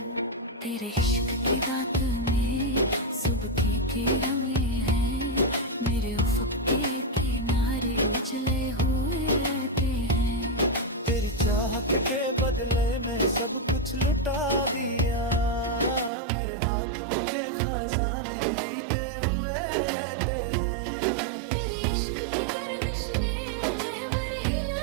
तेरे इश्क की रात में सुबह के किरणे हैं, मेरे उफ़क़ के किनारे उजले हुए रहते हैं। तेरी चाहत के बदले में सब कुछ लुटा दिया, मेरे हाथों के खजाने रीते हुए रहते हैं। तेरे इश्क की गर्दिश ने महवर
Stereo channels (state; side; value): drops out; left; at 16.1 s